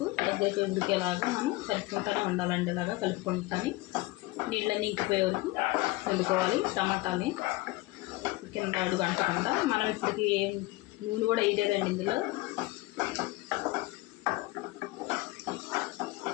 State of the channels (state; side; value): quieter; right; 20.7 dB